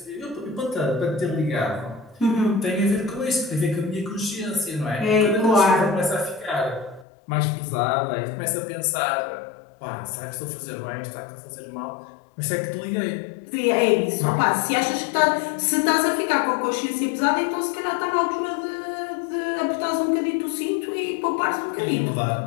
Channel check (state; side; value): drops out; right; at 7.1 s